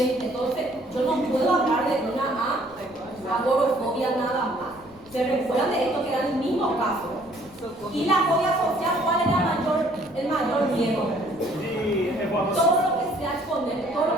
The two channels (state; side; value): noise; left; rumble, 27 dB below the sound